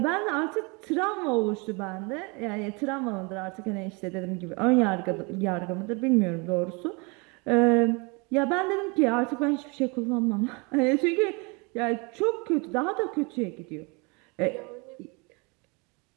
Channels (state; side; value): quieter; left; 29.9 dB